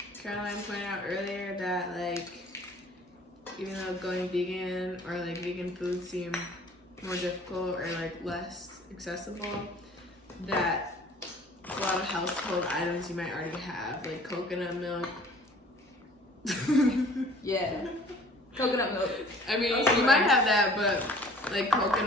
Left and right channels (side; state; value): both; normal; correlation 0.51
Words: Caroline pointed out earlier that like, even though going vegan or like vegan food seem more difficult or like less accessible, that a lot of household items you might already have, like coconut milk. Yeah. Coconut milk. I mean, you might have that, but like